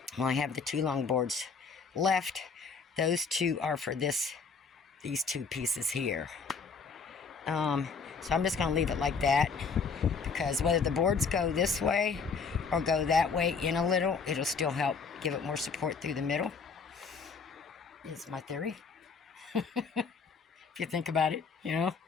well, I have the two long boards left. Those two are for these two pieces here. So I'm just going to leave it like that, because whether the boards go this way or go that way in a little, it'll still help give it more support through the middle, is my theory. If you think about it, you know.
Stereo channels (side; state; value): right; quieter; 5.2 dB